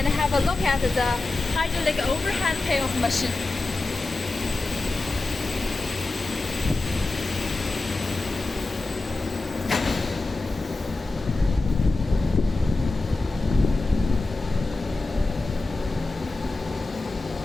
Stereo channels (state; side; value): quieter; right; 3.3 dB